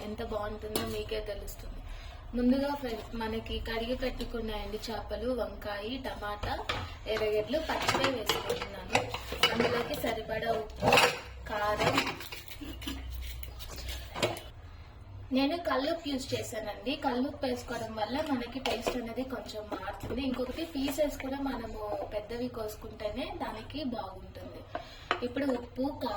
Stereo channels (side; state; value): both; identical; correlation 1.00